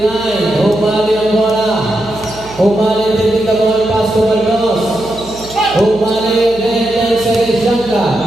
Umali ang bola. Umali din the ball pass to Baldos. Umali again. 10 second shot ka.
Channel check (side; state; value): right; noise; hum, 19 dB below the sound